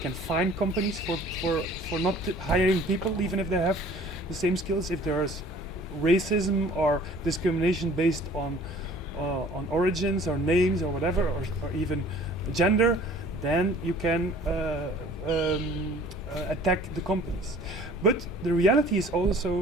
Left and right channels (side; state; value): both; normal; correlation 0.51